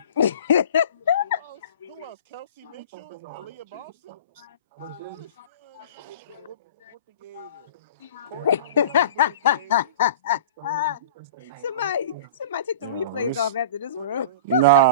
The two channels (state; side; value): inverted; both; correlation -0.39